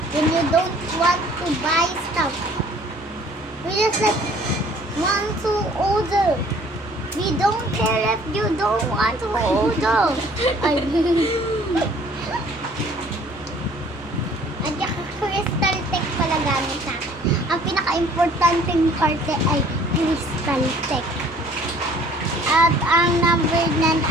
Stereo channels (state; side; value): normal; both; correlation 0.55